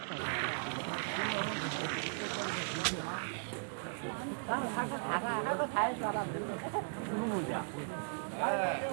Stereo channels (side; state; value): left; silent; digital silence